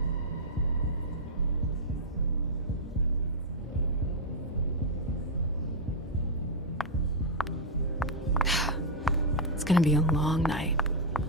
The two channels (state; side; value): normal; both; correlation -0.04